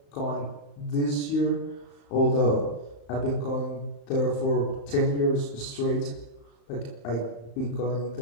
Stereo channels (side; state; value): right; late; 35 ms